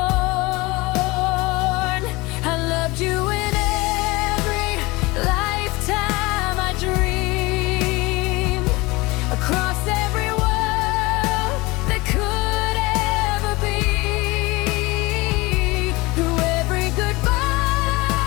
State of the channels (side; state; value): right; quieter; 23.0 dB